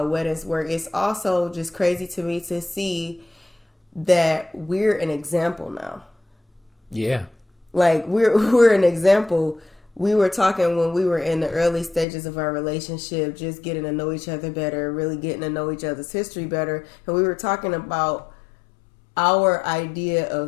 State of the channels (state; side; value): drops out; right; at 12.1 s